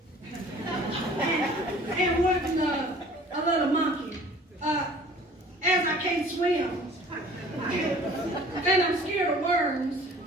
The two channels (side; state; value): both; normal; correlation 0.49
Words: and wanting a little monkey. As I can't swim and I'm scared of worms,